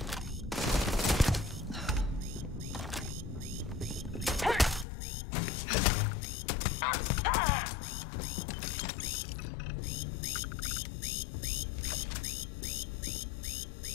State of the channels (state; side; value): drops out; right; at 4.9 s